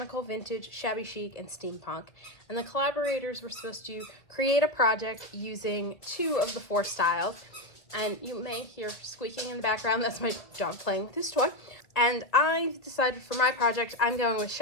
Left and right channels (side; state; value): right; late; 1.8 ms